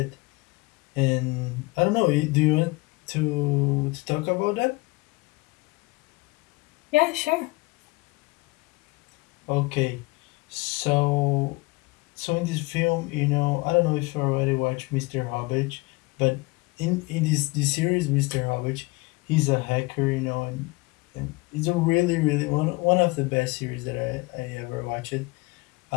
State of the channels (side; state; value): right; quieter; 24.3 dB